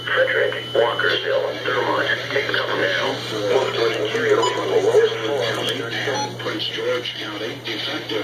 Frederick, Walkersville, Thermont, Take-Up now. Most was interior from the lowest floor. Prince George County,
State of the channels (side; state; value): both; identical; correlation 1.00